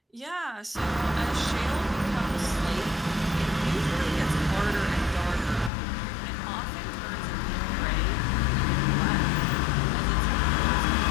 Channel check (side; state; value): right; drops out; at 5.7 s